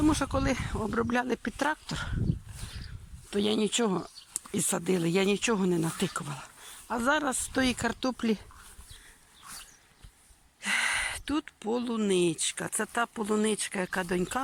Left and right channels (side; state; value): both; identical; correlation 1.00